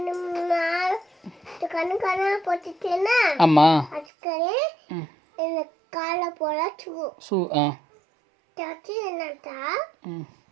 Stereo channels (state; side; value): drops out; left; at 4.0 s